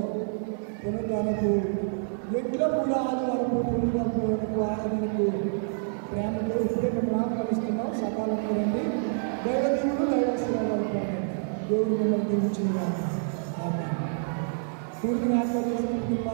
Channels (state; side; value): silent; left; digital silence